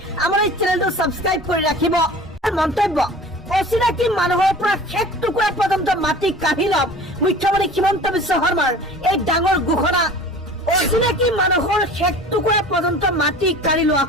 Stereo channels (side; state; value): both; normal; correlation 0.41